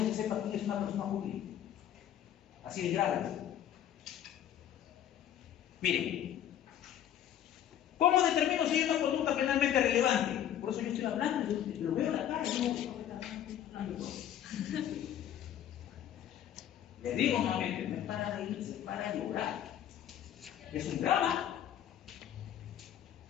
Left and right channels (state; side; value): quieter; right; 10.7 dB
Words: se sepa quién es una persona jurídica. Así de grave. Miren, ¿cómo determino si hay una conducta penalmente relevante? Por eso yo estoy hablando, yo lo veo en la cara, les digo nuevamente, no es para reírse, es para llorar. Es un drama.